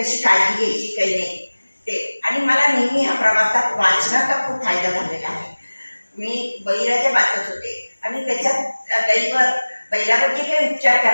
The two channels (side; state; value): both; inverted; correlation -1.00